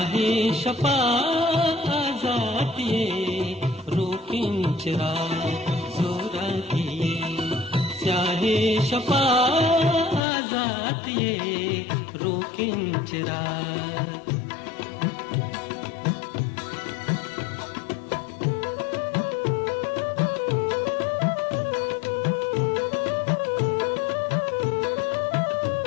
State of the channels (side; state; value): right; drops out; at 10.2 s